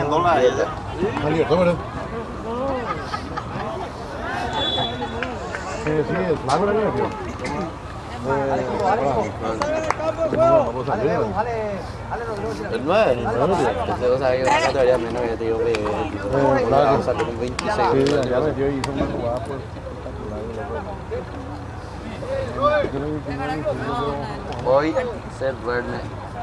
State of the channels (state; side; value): identical; both; correlation 1.00